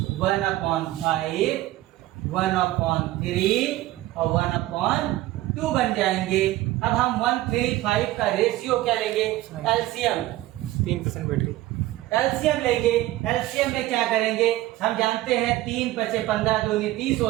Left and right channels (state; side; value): quieter; left; 16.3 dB